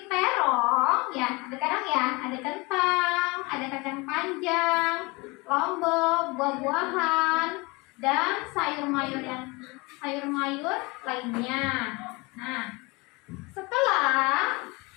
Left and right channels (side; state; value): right; quieter; 25.9 dB